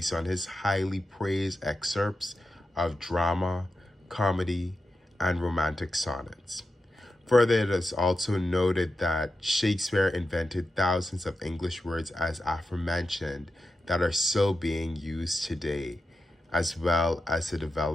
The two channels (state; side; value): normal; both; correlation 0.90